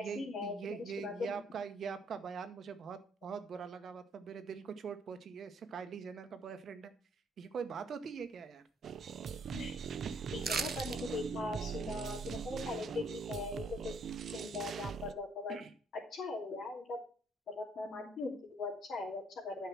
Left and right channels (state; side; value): normal; both; correlation 0.66